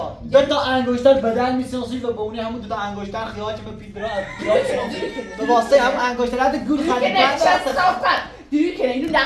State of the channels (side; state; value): both; identical; correlation 1.00